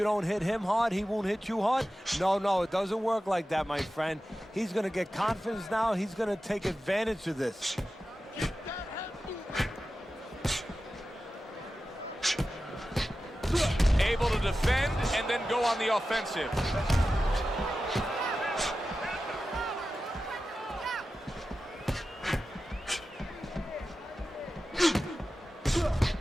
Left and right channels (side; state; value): both; normal; correlation 0.93